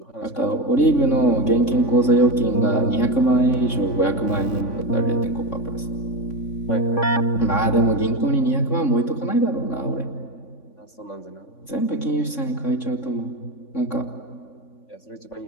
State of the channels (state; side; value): late; right; 3.5 ms